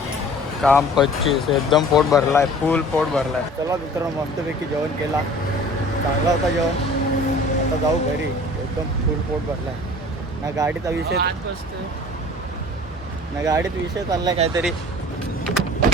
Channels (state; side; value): normal; both; correlation 0.46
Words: काम 25 एकदम पोट भरलाय फुल पोट भरलाय. चला मित्रांनो मस्तपैकी जेवण केला चांगला होता जेवण. आता जाऊ घरी एकदम फुल पोट भरलाय. ना गाडीचा विषय ना गाडीत विषय चाललाय काहीतरी.